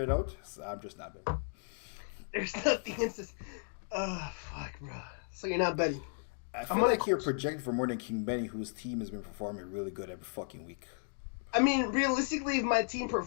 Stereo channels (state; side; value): silent; right; digital silence